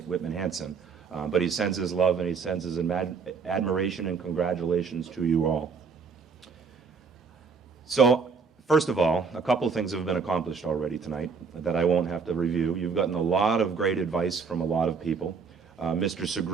Whitman-Hanson. But he sends his love and he sends his admiration and congratulations to you all. So, first of all, a couple of things have been accomplished already tonight that I won't have to review. You've gotten a lot of great advice from a lot of people. Mr.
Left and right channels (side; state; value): left; quieter; 5.3 dB